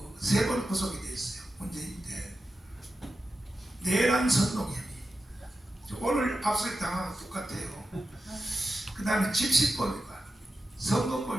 3번 구속이 돼 있어요. 문재인 때 내란 선동혐의. 오늘 압수수색 당한 거 똑같아요. 그 다음에 집시법 위반,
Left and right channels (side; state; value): both; normal; correlation 0.91